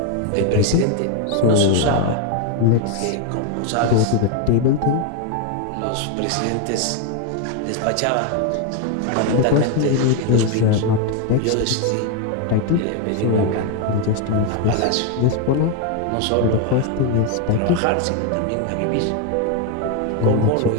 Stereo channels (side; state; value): both; different; correlation 0.01